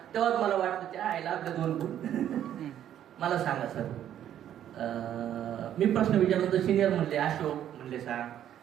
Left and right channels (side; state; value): left; quieter; 10.7 dB